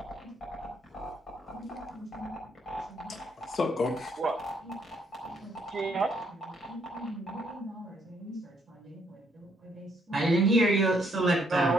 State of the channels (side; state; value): both; normal; correlation 0.70